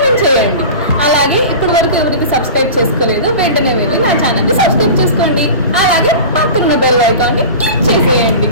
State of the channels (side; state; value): both; inverted; correlation -0.33